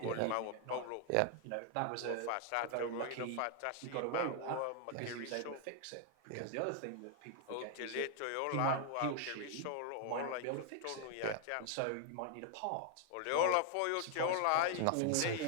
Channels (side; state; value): both; different; correlation 0.00